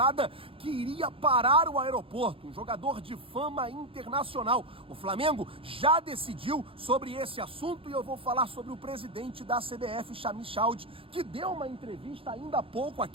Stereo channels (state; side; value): late; left; 0.27 ms